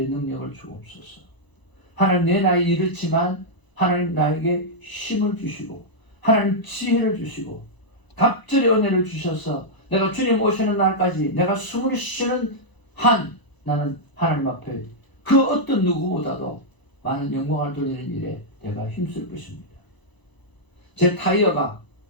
능력을 주옵소서. 하나님, 내 나이 이렇지만 하나님 나에게 힘을 주시고 하나님 지혜를 주시고 갑절의 은혜를 주셔서 내가 주님 오시는 날까지 내가 숨을 쉬는 한 나는 하나님 앞에 그 어떤 누구보다도 많은 영광을 돌리는 일에 내가 힘쓸 것입니다. 제 타이어가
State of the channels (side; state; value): right; late; 1.0 ms